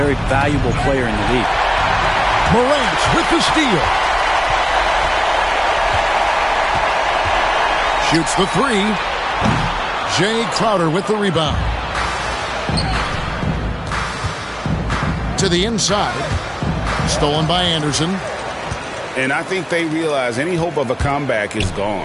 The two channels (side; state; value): both; identical; correlation 1.00